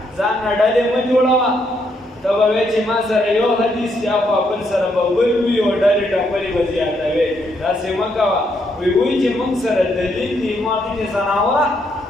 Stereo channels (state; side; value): normal; both; correlation 0.75